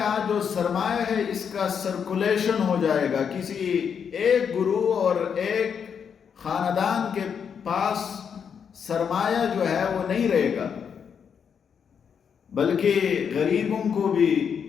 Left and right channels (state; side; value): quieter; right; 7.1 dB